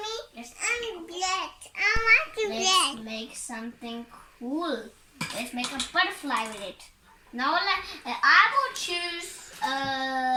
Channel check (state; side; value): identical; both; correlation 1.00